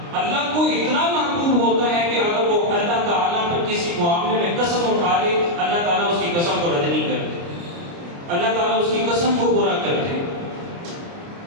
اللہ کو اتنا محبوب ہوتا ہے کہ اگر وہ اللہ تعالیٰ پر کسی معاملے میں قسم اٹھا لے، اللہ تعالیٰ اس کی قسم کو رد نہیں کرتے، اللہ تعالیٰ اس کی قسم کو پورا کرتے.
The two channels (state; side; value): late; left; 29 ms